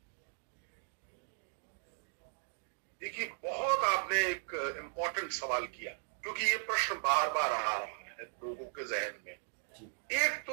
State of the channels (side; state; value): left; silent; digital silence